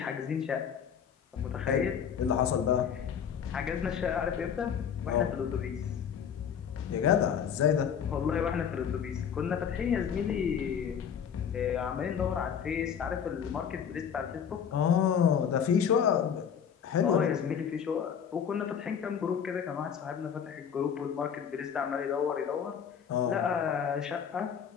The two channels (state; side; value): quieter; right; 7.8 dB